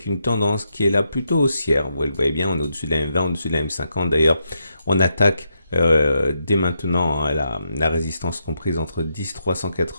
une tendance qui est là plutôt haussière. Vous le voyez bien, on est au-dessus de la M20, au-dessus de la M50. D'ailleurs, on attaque dès maintenant la résistance comprise entre 10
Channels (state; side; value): inverted; both; correlation -0.82